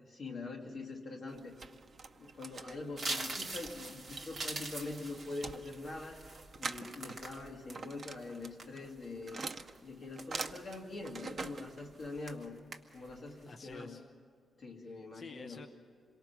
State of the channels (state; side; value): normal; both; correlation 0.82